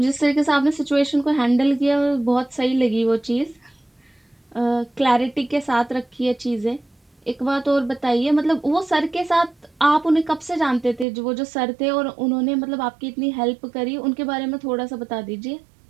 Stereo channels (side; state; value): left; drops out; at 11.1 s